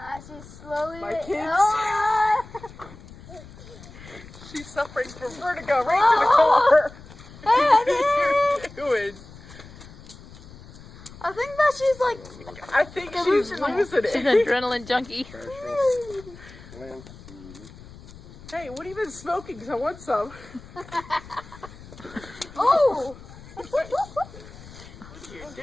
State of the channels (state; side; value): noise; left; rumble, 18 dB below the sound